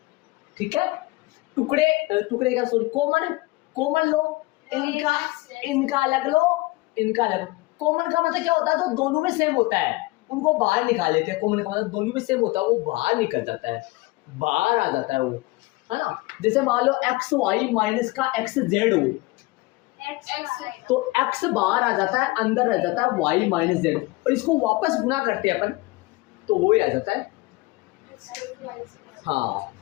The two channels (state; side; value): quieter; right; 21.6 dB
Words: ठीक है। टुकड़े का सॉरी कॉमन लो, इनका अलग लो, इनका अलग। कॉमन का मतलब क्या होता है, तो दोनों में सेम होता है उनको बाहर निकाल लेते हैं। कॉमन का मतलब दोनों में सेम होता है, वो बाहर निकल जाता है, बाहर आ जाता है वो, है ना। जैसे मान लो एक्स वाई माइनस का एक्स जेड हो, तो एक्स बाहर आ जाता है, अंदर रह जाता है वाई माइनस जेड, और इसको वापस गुना करते हैं अपन तो वो ही आ जाता है। हाँ